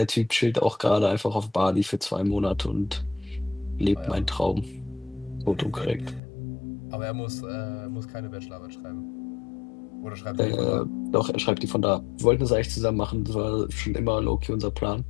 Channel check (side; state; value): right; drops out; at 6.2 s